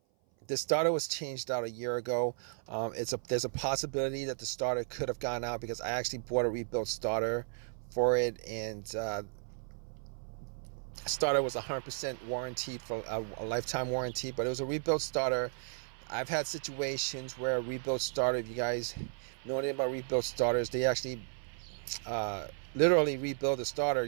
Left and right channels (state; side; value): silent; left; 55 dB below the other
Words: the starter was changed out a year ago. There's a possibility that the starter could have gone out, because I actually bought a rebuilt starter for it, and starter was 100% warranted for a lifetime warranty, but it was a rebuilt starter. I've had situations where a rebuilt starter, if you guys know anything about rebuilt starters, they actually literally rebuild the starter.